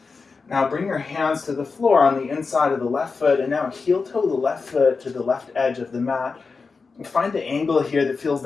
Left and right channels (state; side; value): quieter; right; 4.6 dB